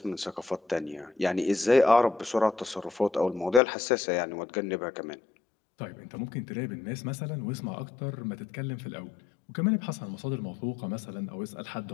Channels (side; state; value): right; drops out; at 3.6 s